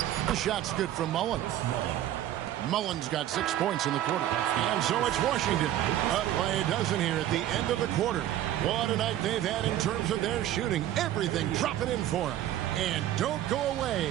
The shot's good from Mullen. Mullen's got 6 points in the quarter. And so it's Washington up by a dozen here at the end of the quarter. What a night they've had in terms of their shooting. Everything dropping in for them. And don't go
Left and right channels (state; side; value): quieter; left; 12.6 dB